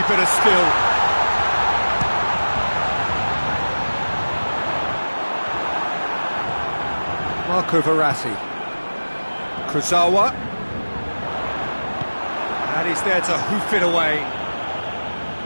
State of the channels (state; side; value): inverted; both; correlation -1.00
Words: bit of skill. Marco Verratti. Kurzawa. And he's there to hoof it away.